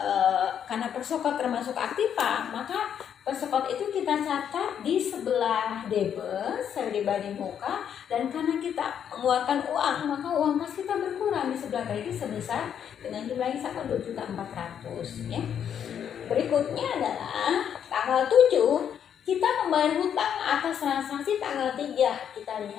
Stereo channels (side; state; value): right; quieter; 8.7 dB